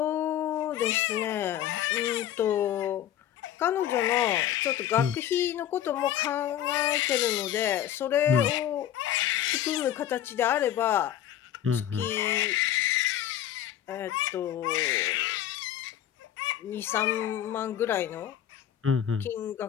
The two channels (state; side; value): quieter; right; 11.1 dB